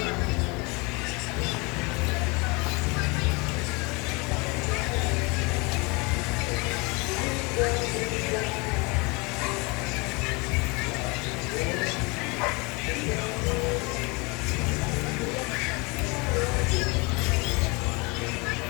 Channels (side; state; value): right; quieter; 28.1 dB